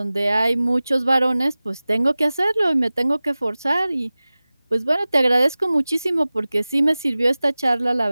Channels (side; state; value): both; inverted; correlation -0.98